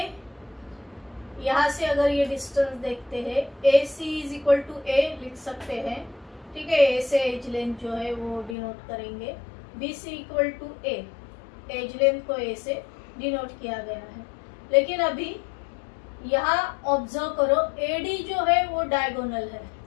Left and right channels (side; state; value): right; drops out; at 8.6 s